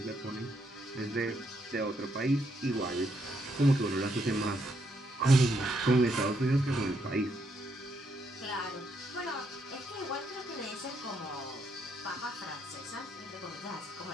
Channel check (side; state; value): both; normal; correlation 0.76